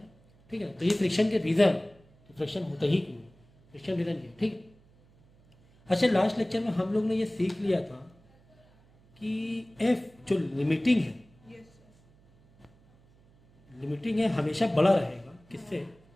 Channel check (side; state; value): right; noise; hum, 30 dB below the sound